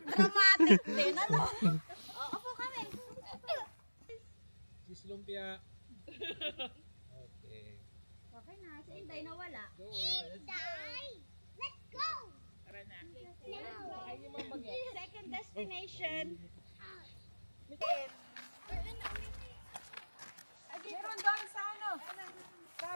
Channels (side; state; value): both; inverted; correlation -1.00